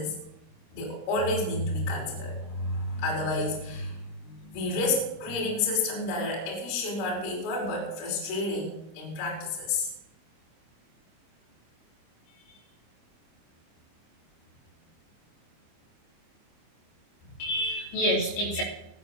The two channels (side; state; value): right; late; 25 ms